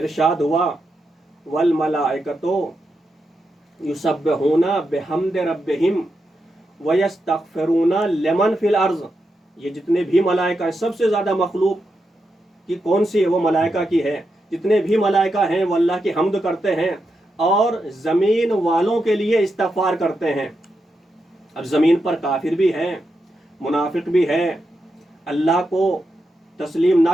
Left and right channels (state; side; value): normal; both; correlation 0.86